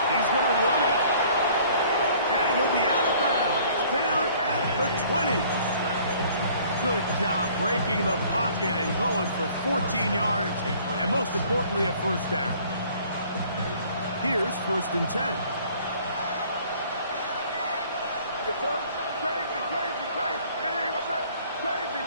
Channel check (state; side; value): inverted; both; correlation -0.55